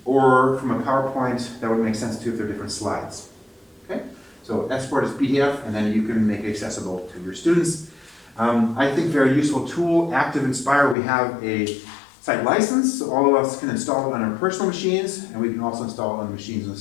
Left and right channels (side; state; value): right; drops out; at 11.0 s